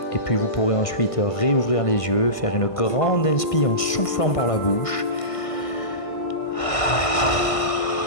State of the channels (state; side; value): late; right; 1.5 ms